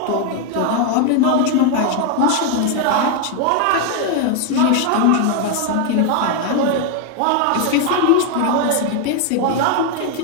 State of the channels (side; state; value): both; different; correlation 0.01